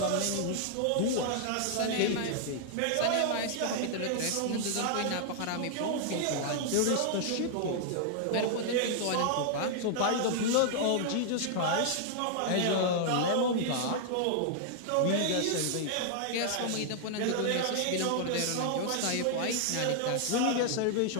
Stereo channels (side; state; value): both; different; correlation 0.00